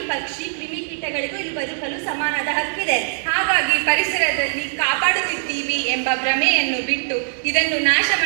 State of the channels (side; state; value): left; silent; 65 dB below the other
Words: ಪಕ್ಷಿ, ಕ್ರಿಮಿಕೀಟಗಳಿಗೂ ಇಲ್ಲಿ ಬದುಕಲು ಸಮಾನದ ಹಕ್ಕಿದೆ. ಹಾಗಾಗಿ ಪರಿಸರದಲ್ಲಿ ಕಾಪಾಡುತ್ತಿದ್ದೀವಿ ಎಂಬ ಭ್ರಮೆಯನ್ನು ಬಿಟ್ಟು ಇದನ್ನು ನಾಶ